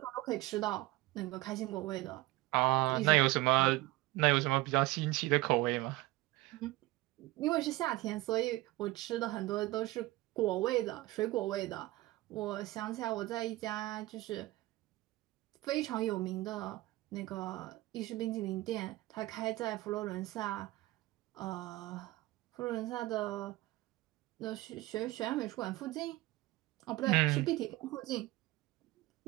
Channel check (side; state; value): left; quieter; 18.7 dB